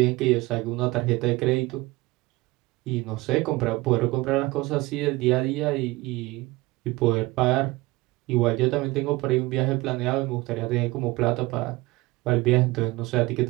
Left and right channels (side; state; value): left; quieter; 21.3 dB